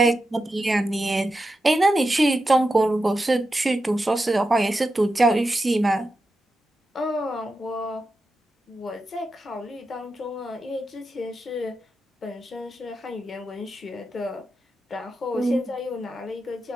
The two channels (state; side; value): normal; both; correlation 0.89